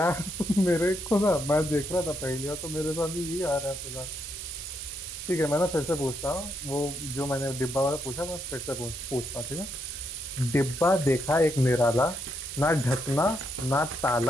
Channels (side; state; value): right; noise; hiss, 10 dB below the sound